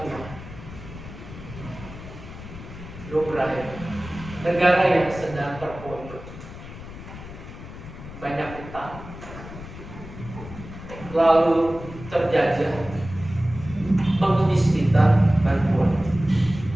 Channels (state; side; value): noise; left; rumble, 13 dB below the sound